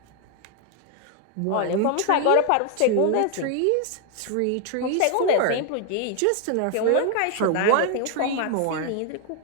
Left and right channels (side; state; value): both; different; correlation 0.00